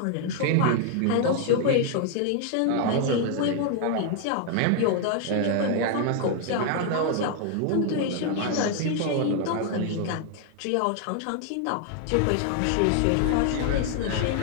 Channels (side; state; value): both; different; correlation 0.00